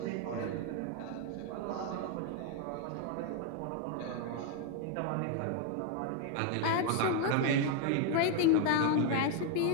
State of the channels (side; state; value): both; different; correlation 0.01